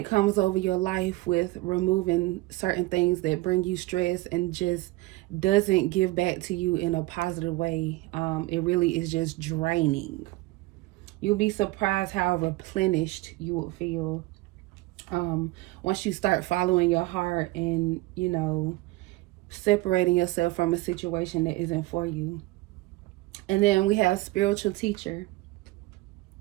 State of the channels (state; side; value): quieter; left; 20.1 dB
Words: comes over your life with removing certain things that bring you stress and just doesn't give back to you in a positive way. It really is just draining. You'll be surprised how replenished you will feel once you start following your heart and, you know, separating yourself from a situation that isn't for you. And then we have spiritual teacher.